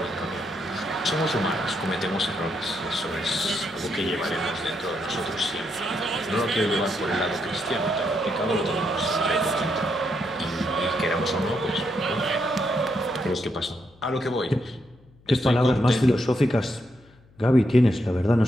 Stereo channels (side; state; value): left; noise; hum, 28 dB below the sound